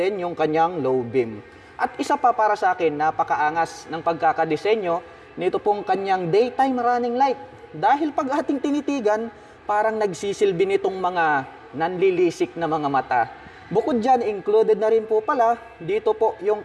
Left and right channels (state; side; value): identical; both; correlation 1.00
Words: yung kanyang low beam. At isa pa para sa akin, napakaangas ng pagkakadesenyo nito pong kanyang daytime running light. Dahil pag ating tinitigan, parang nagsisilbi nitong mga nanlilisik na mga mata. Bukod dyan, included na rin po pala, dito po